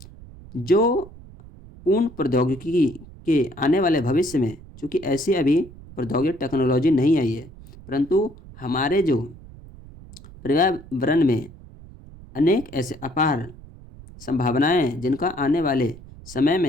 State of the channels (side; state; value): right; noise; rumble, 19 dB below the sound